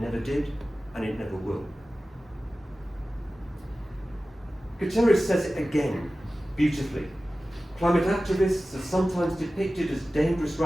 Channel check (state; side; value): normal; both; correlation 0.96